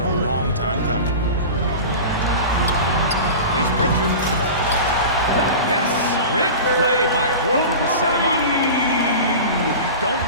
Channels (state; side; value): inverted; both; correlation -0.32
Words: a long time coming. Here's Pritchard. Yes, great play by Horford to set him up. You don't